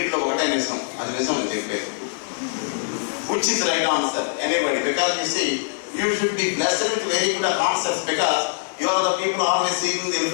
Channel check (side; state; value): right; silent; 63 dB below the other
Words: ఒకటే నిజం, అది నిజం అని చెప్పేది. Which is right answer? Anybody? Because you see, you should be blessed with very good concepts, because you are the people always seeking the